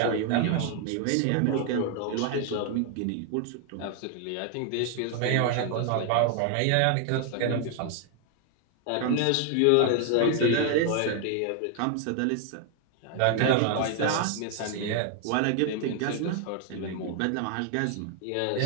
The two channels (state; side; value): different; both; correlation 0.00